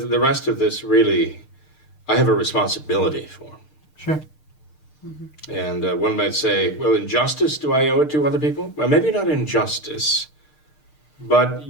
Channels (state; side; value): late; right; 6.6 ms